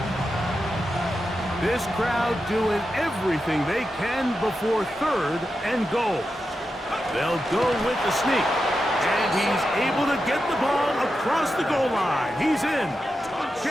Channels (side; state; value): both; normal; correlation 0.89